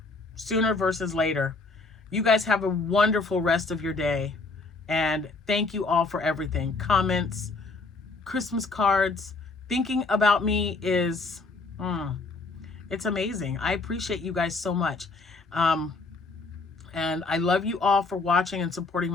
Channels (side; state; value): right; quieter; 3.7 dB